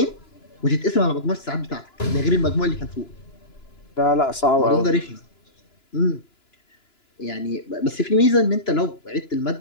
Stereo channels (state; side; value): late; right; 2.9 ms